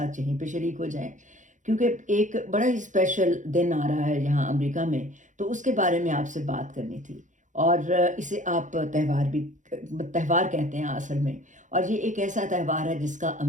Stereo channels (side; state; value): left; late; 0.36 ms